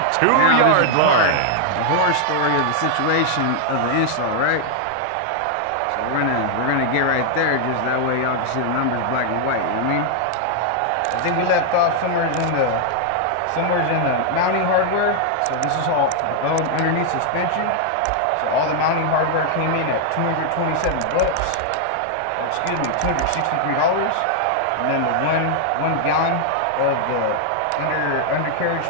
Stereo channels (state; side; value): different; both; correlation 0.00